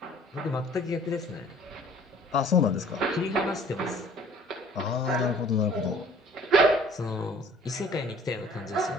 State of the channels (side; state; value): both; normal; correlation 0.52